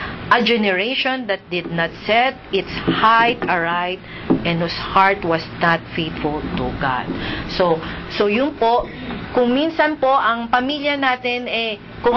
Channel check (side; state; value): both; identical; correlation 1.00